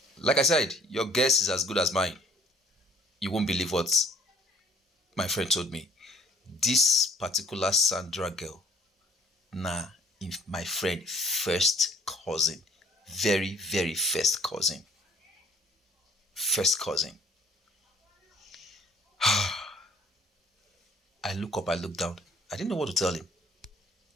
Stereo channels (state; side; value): normal; both; correlation 0.57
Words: Like I said, your guess is as good as mine. You won't believe what my friend told me. This particular Sandra girl, nah, my friend first cousin, very very first cousin, first cousin. I look up, I look down. I didn't know what to tell him.